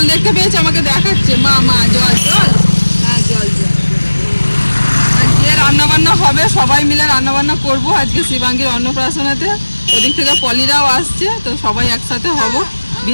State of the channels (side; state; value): both; inverted; correlation -1.00